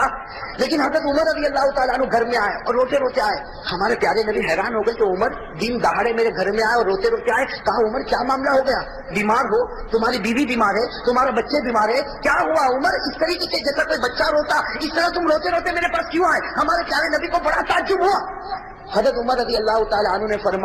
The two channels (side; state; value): both; identical; correlation 1.00